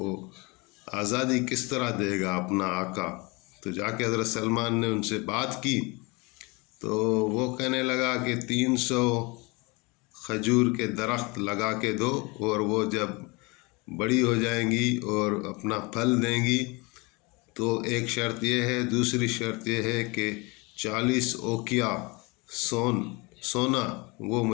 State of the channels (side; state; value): right; quieter; 26.9 dB